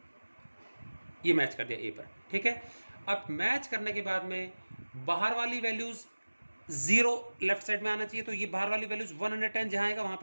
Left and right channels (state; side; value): inverted; both; correlation -1.00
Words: ये मैच कर दिया ए पर, ठीक है। अब मैच करने के बाद में बाहर वाली वैल्यूज जीरो लेफ्ट साइड में आना चाहिए, तो ये बाहर वाली वैल्यूज 110 जहां आएगा वहां